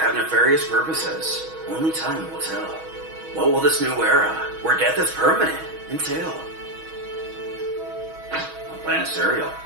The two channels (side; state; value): left; late; 6.2 ms